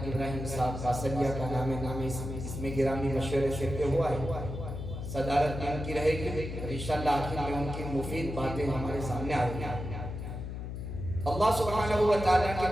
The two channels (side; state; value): left; noise; hum, 6 dB below the sound